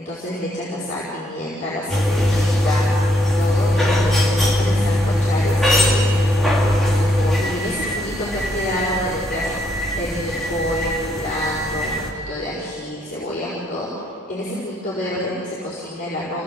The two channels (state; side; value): normal; both; correlation 0.72